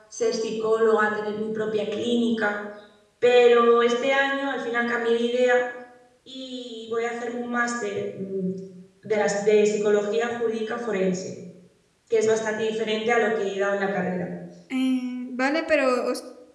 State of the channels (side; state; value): both; identical; correlation 1.00